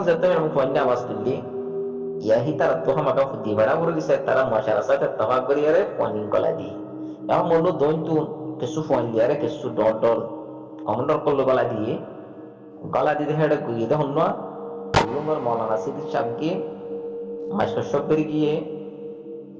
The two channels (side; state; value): both; identical; correlation 1.00